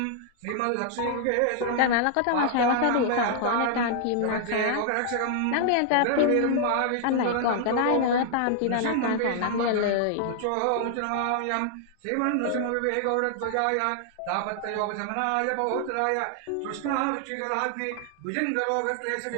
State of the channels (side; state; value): both; different; correlation -0.01